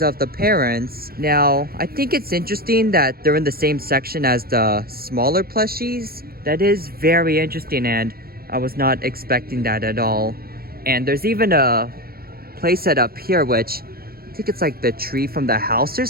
the parents. Now, I think it's interesting that they're in the same section as the smaller plushies. That is very interesting, and I was not expecting that at all. And there's even a playset up here, which I think it's like the tree from the house or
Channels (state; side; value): late; left; 0.44 ms